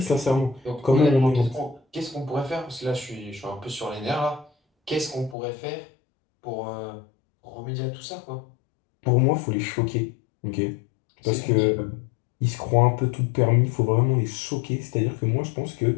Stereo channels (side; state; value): right; drops out; at 5.4 s